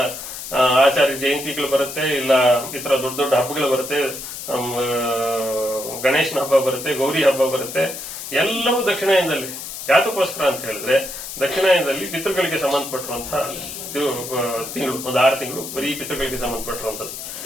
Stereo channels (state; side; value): noise; left; hiss, 9 dB below the sound